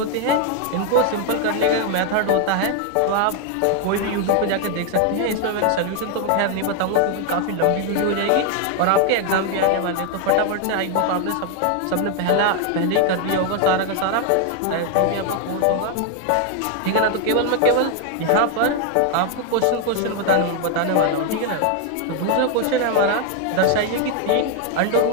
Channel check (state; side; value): different; both; correlation 0.00